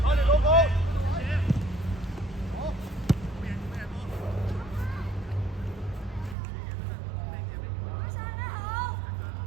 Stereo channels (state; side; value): drops out; left; at 6.4 s